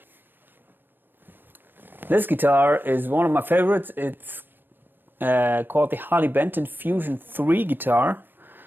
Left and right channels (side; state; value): left; late; 0.095 ms